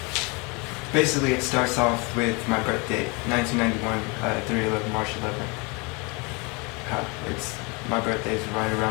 Basically, it starts off with my birthday, 1991, 3/11, March 11th. My birthday's right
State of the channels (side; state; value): right; quieter; 29.5 dB